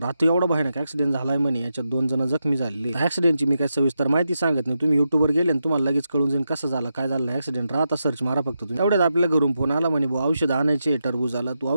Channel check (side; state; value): both; inverted; correlation -0.87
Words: रात्री एवढा भयानक ऍक्सिडेंट झालाय म्हणे, याच्यात 2 जण जखमी झाले. ऍक्सिडेंटची मी काय सविस्तर माहिती सांगत नाही, तुम्ही युट्यूबवर गेले आणि तुम्हाला लगेच कळून जाईल कसं झालं काय झालं ऍक्सिडेंट. आता सर्च मारा फक्त तुम्ही. एवढ्यात आपल्या घरून फोन आला म्हणे भाऊ औषध आणायचे, टरबूज आला, तू